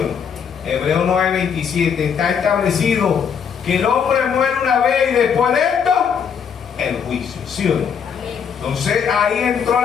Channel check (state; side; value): quieter; right; 7.1 dB